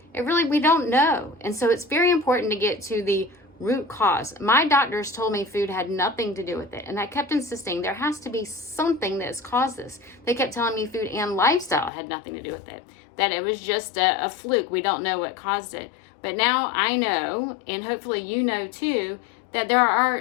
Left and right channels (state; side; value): drops out; right; at 11.9 s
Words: We don't know. And so it's very important to get to the root cause. My doctors told me food had nothing to do with it. And I kept insisting there has to be something that's caused this. They kept telling me food and lifestyle had nothing to do with it. That it was just a fluke. We don't know what caused it. But now I know, and hopefully you know too, that there